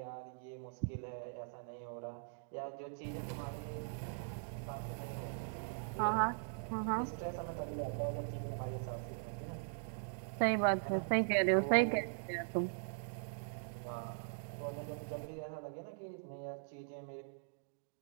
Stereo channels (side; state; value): left; silent; digital silence